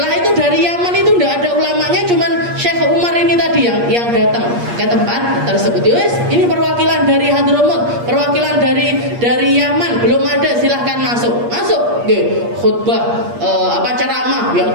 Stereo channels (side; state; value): left; late; 8.5 ms